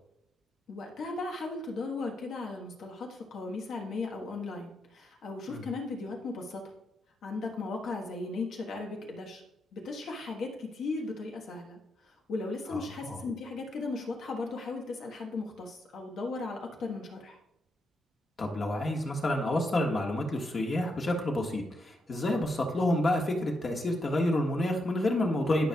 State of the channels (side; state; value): both; normal; correlation 0.82